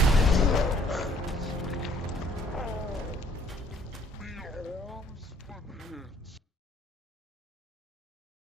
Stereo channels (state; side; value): normal; both; correlation 0.60